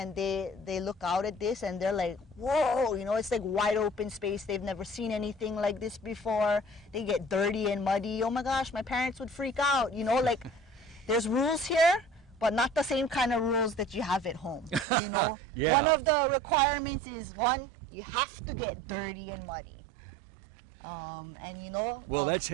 they look out at this and they're like, whoa, you know, it's like wide open space. They've never seen anything like this before. They get dirty and muddy. Oh my gosh, my parents would freak out, you know, like there's rules here, but not the same kind of rules that you have at home, you know? Yeah. One of the requirements is, one, you have to get dirty and muddy. And you know... Well, that's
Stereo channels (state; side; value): drops out; left; at 14.9 s